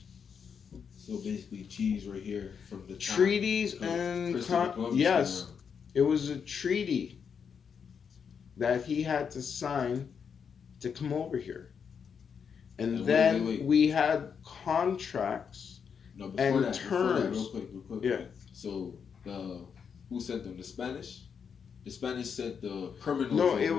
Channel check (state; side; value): quieter; right; 6.7 dB